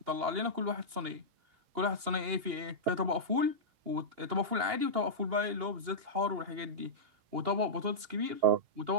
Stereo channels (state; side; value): late; left; 2.8 ms